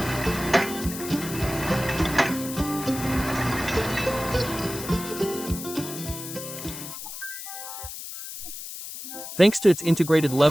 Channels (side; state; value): left; noise; hiss, 9 dB below the sound